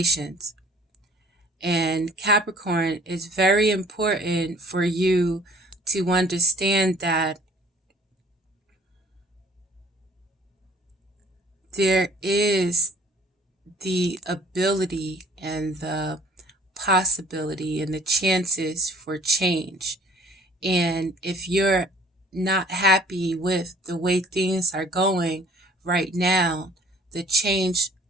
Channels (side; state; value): both; normal; correlation 0.53